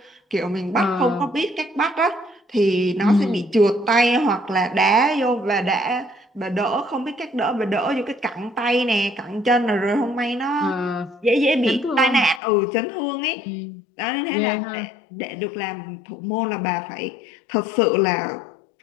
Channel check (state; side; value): drops out; right; at 12.4 s